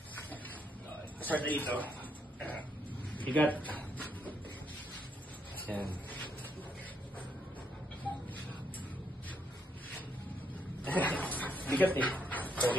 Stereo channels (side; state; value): both; normal; correlation 0.75